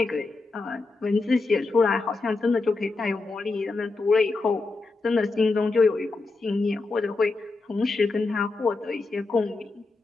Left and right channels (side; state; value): right; quieter; 3.6 dB